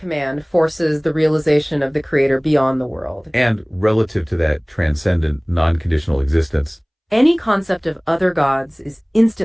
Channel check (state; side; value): identical; both; correlation 1.00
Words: forces the realization of the Creator beyond the world. And relative to that transcendent, non-conditional existence, any concept of other gods is